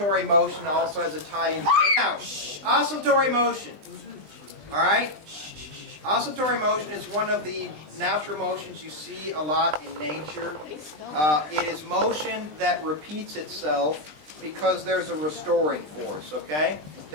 motion also has a tie-in. Now, oscillatory motion. All right. Oscillatory motion is one of the natural motions you see a lot in nature. It is motion that repeats itself because there's a restoring force, okay?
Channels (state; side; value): late; left; 20 ms